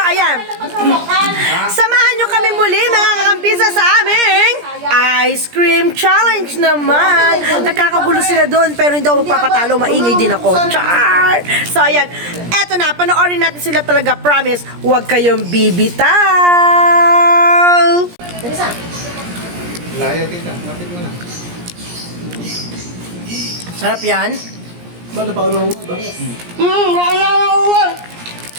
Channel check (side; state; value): left; late; 17 ms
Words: samahan nyo kami muli mga kakampisa sa aming ice cream challenge naman. Nagkakagulo sila doon pero hindi ako magpapatalo, maingay din ako. Char! So ayan, eto na, panoorin natin sila talaga, promise, huwag kayong bibitaw. Layo, tita. Lapit mo na. Sarap yan. Ba't na pa ulo ba?